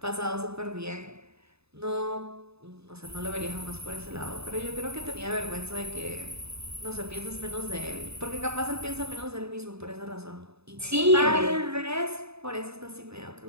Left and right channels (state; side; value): late; left; 0.79 ms